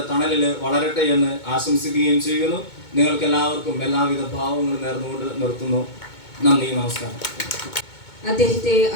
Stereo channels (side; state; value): right; late; 2.2 ms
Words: തണലിൽ വളരട്ടെ എന്ന് ആശംസിക്കുകയും ചെയ്യുന്നു. നിങ്ങൾക്ക് എല്ലാവർക്കും എല്ലാവിധ ഭാവങ്ങളും നേർന്നുകൊണ്ട് നിർത്തുന്നു. നന്ദി, നമസ്കാരം. അദ്ദേഹത്തെ